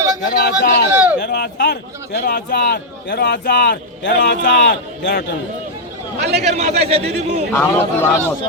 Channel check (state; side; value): normal; both; correlation -0.04